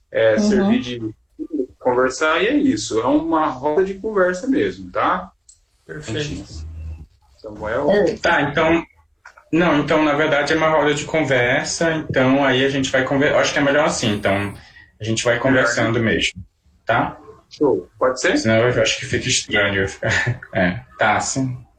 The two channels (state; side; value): identical; both; correlation 1.00